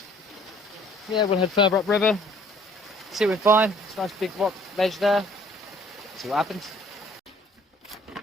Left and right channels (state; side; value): normal; both; correlation 0.57